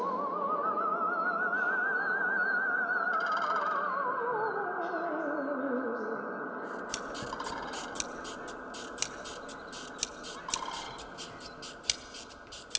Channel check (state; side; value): identical; both; correlation 1.00